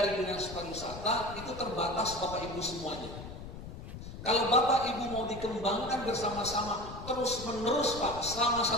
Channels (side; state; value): left; noise; rumble, 11 dB below the sound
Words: Dinas Pariwisata itu terbatas Bapak Ibu semuanya. Kalau Bapak Ibu mau dikembangkan bersama-sama terus menerus Pak, selama